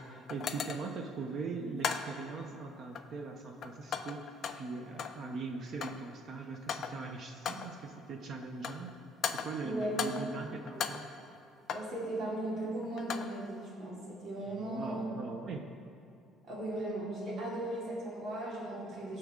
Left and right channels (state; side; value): normal; both; correlation 0.62